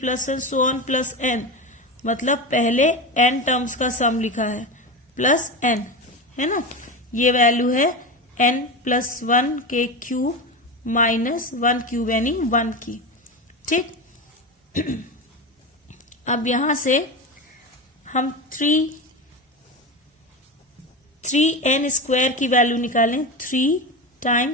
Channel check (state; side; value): normal; both; correlation 0.21